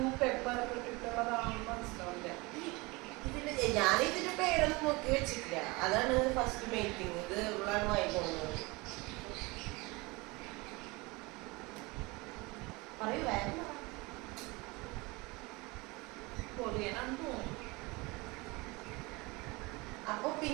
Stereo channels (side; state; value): left; quieter; 24.6 dB